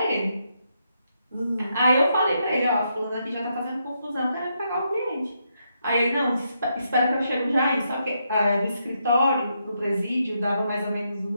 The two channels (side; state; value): both; inverted; correlation -0.80